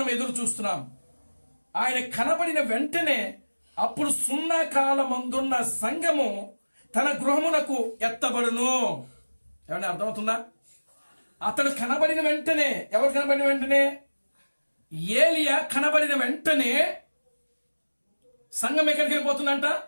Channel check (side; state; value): both; inverted; correlation -1.00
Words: ఎదురు చూస్తున్నాం. ఆయన కనబడిన వెంటనే అప్పుడు సున్నా కాలమందున్న సంఘము తన గృహమునకు ఎత్తబడును. ఏమన్నా అర్థమవుతుందా? అతడు కనబడిన వెంటనే, ఎవరు కనబడిన వెంటనే? ఏలియా కనబడిన వెంటనే సంఘం ఎక్కడికి వెళ్ళిపోతుందంట?